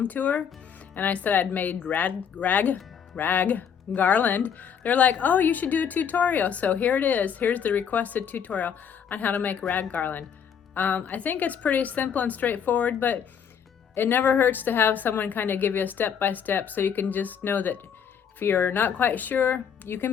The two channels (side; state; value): right; quieter; 7.7 dB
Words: tour, and I said I'd made rag garland. They're like, oh, you should do a tutorial. So here it is. Here's the requested tutorial on how to make rag garland. I think it's pretty simple and straightforward, but it never hurts to have someone kind of give you a step-by-step so you can just know that if you're not quite sure, you